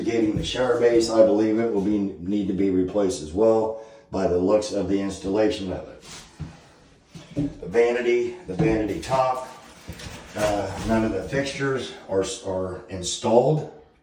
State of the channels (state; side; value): identical; both; correlation 1.00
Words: the shower base, I believe it will need to be replaced as well by the looks of the installation of it. The vanity top, none of the fixtures are installed.